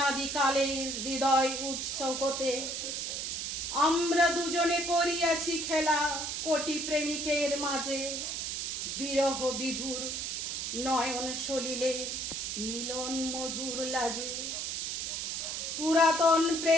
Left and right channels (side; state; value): right; noise; hiss, 3 dB below the sound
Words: হৃদয় উৎস হতে আমরা দুজনে করিয়াছি খেলা কোটি প্রেমিকের মাঝে। বিরহ বিধুর নয়ন সলিলে মিলন মধুর লাজে, পুরাতন